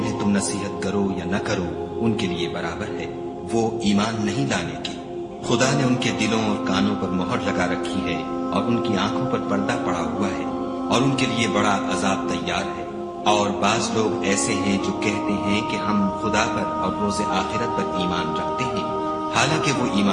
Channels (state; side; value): identical; both; correlation 1.00